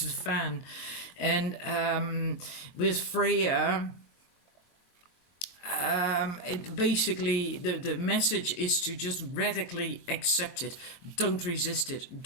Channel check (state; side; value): late; right; 23 ms